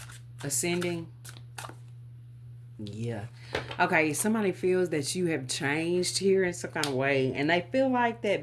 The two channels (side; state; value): both; identical; correlation 1.00